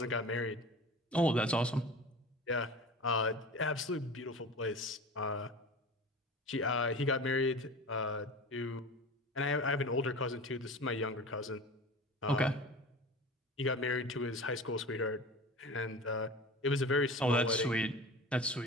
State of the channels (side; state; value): both; normal; correlation 0.35